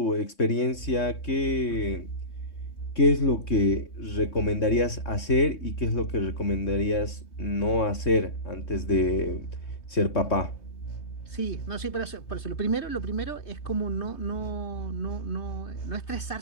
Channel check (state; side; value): late; right; 3.2 ms